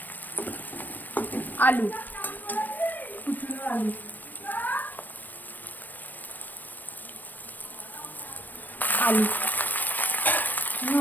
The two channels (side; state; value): right; late; 0.089 ms